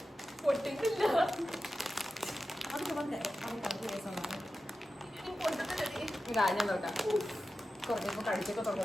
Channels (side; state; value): both; normal; correlation 0.93